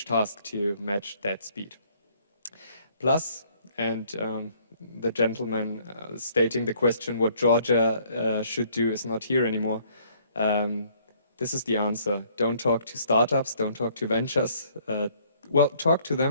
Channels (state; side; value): inverted; both; correlation -0.63